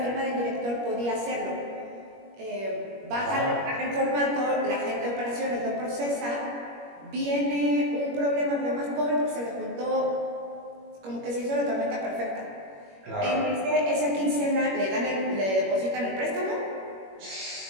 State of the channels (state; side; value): late; left; 21 ms